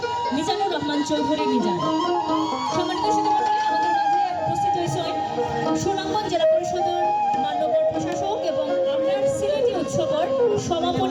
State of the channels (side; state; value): both; identical; correlation 1.00